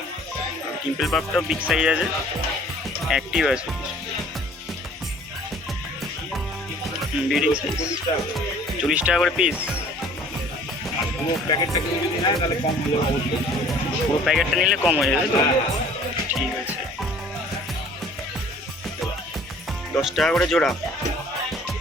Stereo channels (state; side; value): normal; both; correlation 0.52